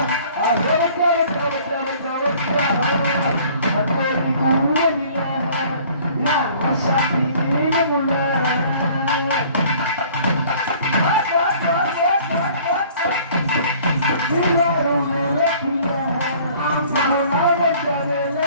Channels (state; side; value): inverted; both; correlation -0.53